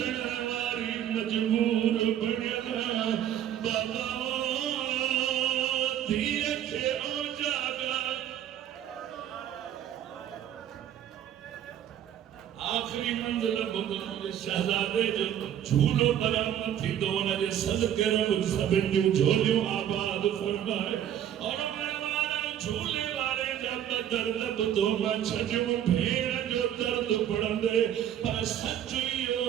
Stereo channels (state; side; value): quieter; left; 10.5 dB